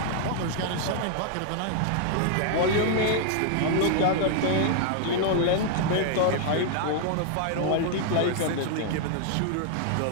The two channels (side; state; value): both; different; correlation -0.01